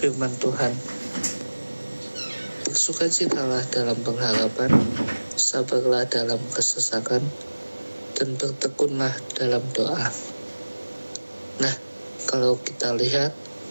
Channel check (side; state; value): both; inverted; correlation -1.00